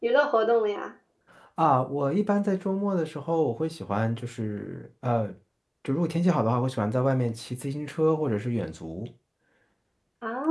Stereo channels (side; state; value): both; identical; correlation 1.00